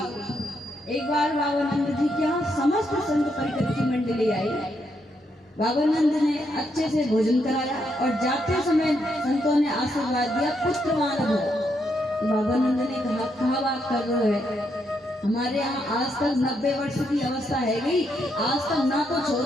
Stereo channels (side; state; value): both; normal; correlation 0.78